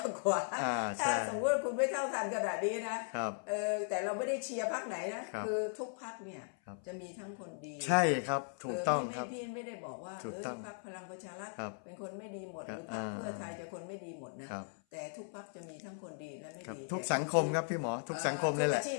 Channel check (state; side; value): silent; right; 53 dB below the other